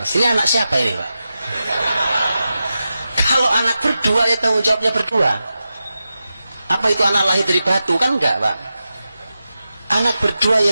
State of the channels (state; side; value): inverted; both; correlation -0.91